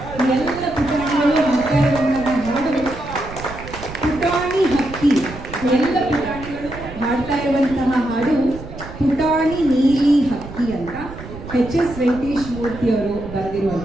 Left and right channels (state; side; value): noise; right; rumble, 13 dB below the sound